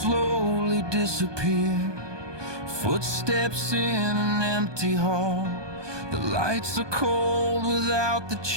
disappear, footsteps in an empty hall. The lights are cold without the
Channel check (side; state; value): left; late; 1.2 ms